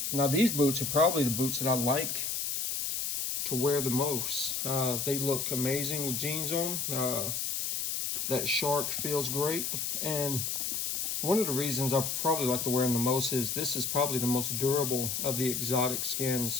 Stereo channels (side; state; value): left; noise; hiss, 1 dB below the sound